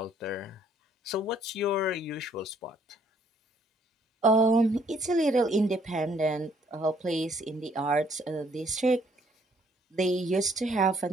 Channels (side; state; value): both; normal; correlation 0.65